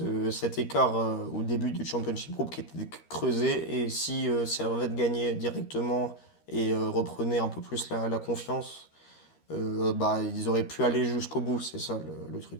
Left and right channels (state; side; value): late; right; 13 ms